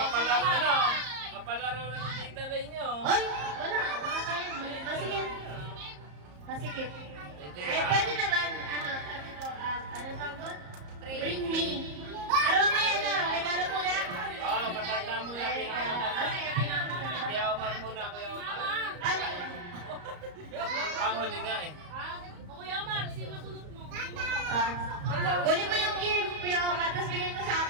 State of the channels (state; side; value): late; left; 34 ms